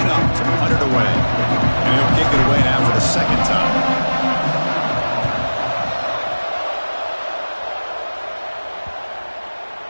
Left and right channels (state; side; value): inverted; both; correlation -1.00